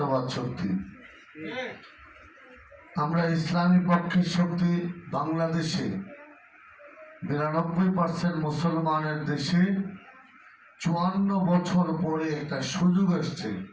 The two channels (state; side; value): identical; both; correlation 1.00